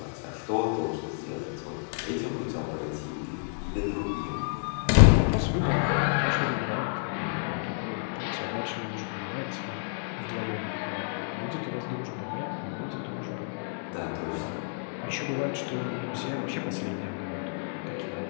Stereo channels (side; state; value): right; silent; digital silence